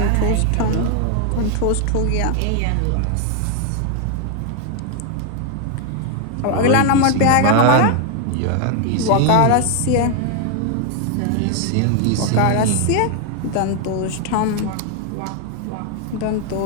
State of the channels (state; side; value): different; both; correlation 0.01